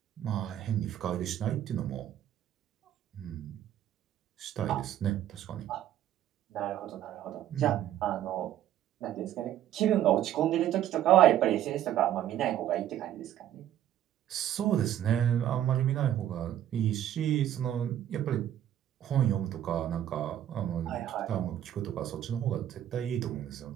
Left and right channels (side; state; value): left; quieter; 11.5 dB